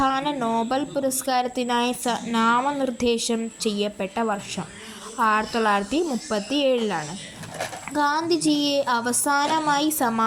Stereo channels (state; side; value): identical; both; correlation 1.00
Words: നോബൽ പുരസ്കാരത്തിനായി നാമനിർദ്ദേശം ചെയ്യപ്പെട്ട വർഷം 1937. ഗാന്ധിജിയെ അവസാനമായി